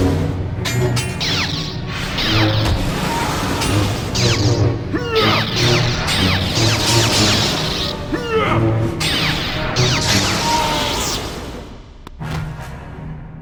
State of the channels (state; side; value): identical; both; correlation 1.00